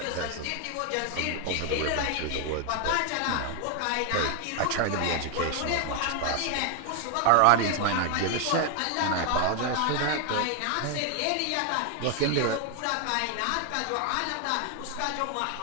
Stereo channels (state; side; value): different; both; correlation 0.00